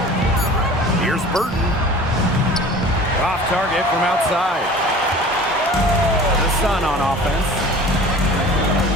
Here's Burton. Off target from outside. The Sun on offense.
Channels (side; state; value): both; normal; correlation 0.42